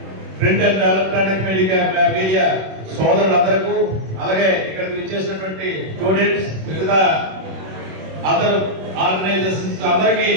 ప్రింట్ అండ్ ఎలక్ట్రానిక్ మీడియా సోదరులందరికీ, అలాగే ఇక్కడికి విచ్చేసినటువంటి స్టూడెంట్స్, మిగతా అదర్ ఆర్గనైజేషన్స్ అందరికీ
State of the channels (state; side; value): late; left; 26 ms